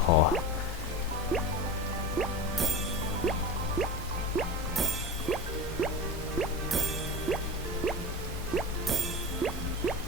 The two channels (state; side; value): normal; both; correlation 0.27